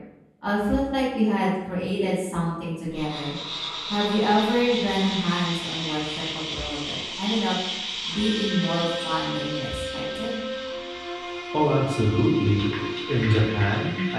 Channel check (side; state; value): both; identical; correlation 1.00